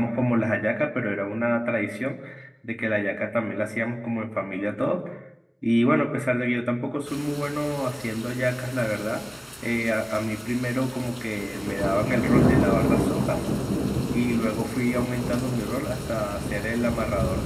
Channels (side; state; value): both; identical; correlation 1.00